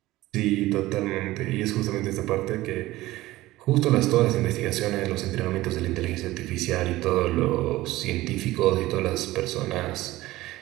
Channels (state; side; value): quieter; left; 17.4 dB